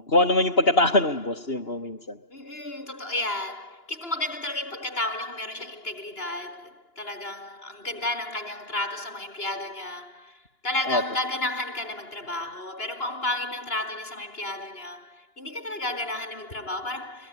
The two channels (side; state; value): right; late; 2.9 ms